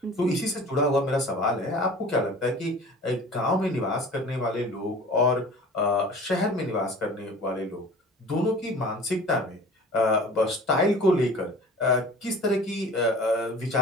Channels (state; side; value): normal; both; correlation 0.43